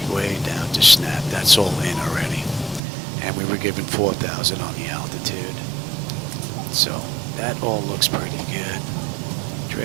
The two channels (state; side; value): drops out; left; at 2.8 s